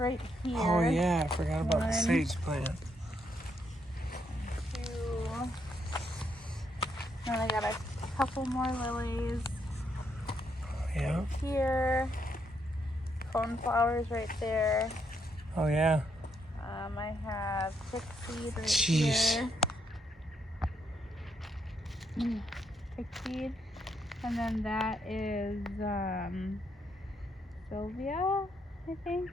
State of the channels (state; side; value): normal; both; correlation 0.76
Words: here. Oh, yeah, I forgot about the One. sage plant. 2. Then I got a couple more lilies Yeah. here. Coneflowers right there. Oh, yeah. I have chickseed right Jeez. here. Chickseed. And then that is Sylvia, I think.